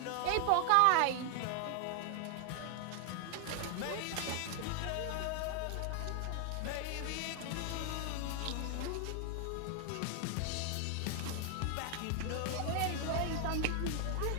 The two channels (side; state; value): both; different; correlation 0.00